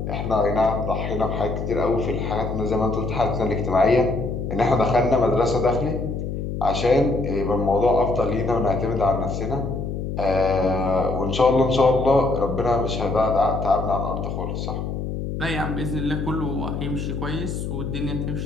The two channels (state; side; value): noise; left; hum, 4 dB below the sound